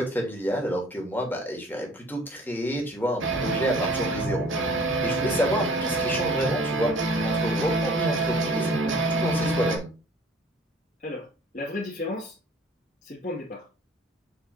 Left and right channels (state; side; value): normal; both; correlation 0.51